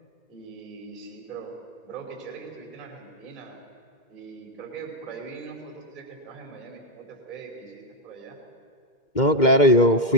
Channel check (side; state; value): right; late; 2.1 ms